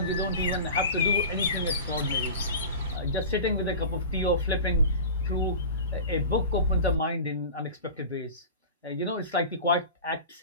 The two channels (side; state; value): both; inverted; correlation -0.33